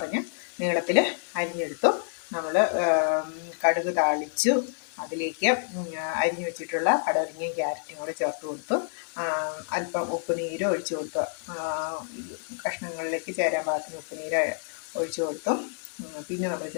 നീളത്തിൽ അരിഞ്ഞെടുത്തു. നമ്മൾ കടുക് താളിച്ചു, അതിലേക്ക് അരിഞ്ഞു വെച്ചിട്ടുള്ള പടവലങ്ങയും ക്യാരറ്റും കൂടെ ചേർത്ത് കൊടുത്തു. അല്പം ഉപ്പുനീര് ഒഴിച്ചു കൊടുത്തു. കഷ്ണങ്ങളിലേക്ക് ചേരാൻ പാകത്തിന് ഉപ്പുനീര് ഒഴിച്ചു കൊടുത്തു. പിന്നെ നമ്മൾ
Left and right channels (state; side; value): silent; right; digital silence